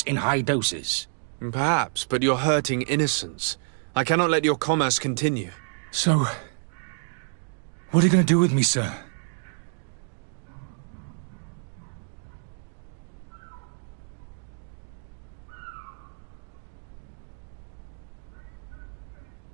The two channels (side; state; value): left; silent; digital silence